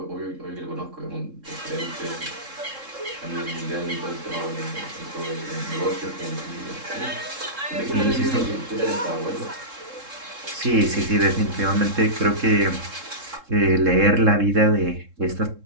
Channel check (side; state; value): left; late; 3.7 ms